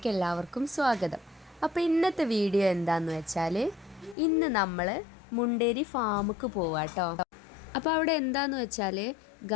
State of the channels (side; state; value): right; drops out; at 4.2 s